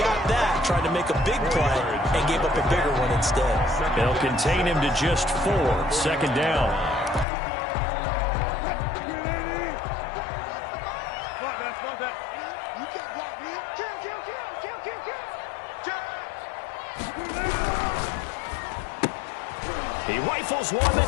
that, tried to make a big play, and gave up a bigger one instead. They'll contain him to just 4. 2nd down. He rifles one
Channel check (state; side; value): drops out; right; at 7.2 s